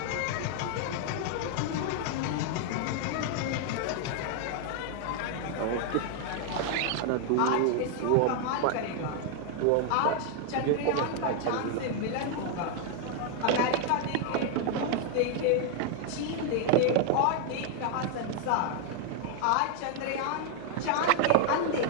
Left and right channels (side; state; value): both; different; correlation 0.00